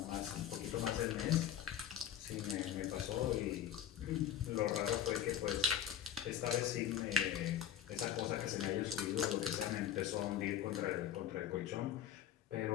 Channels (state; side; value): quieter; right; 9.9 dB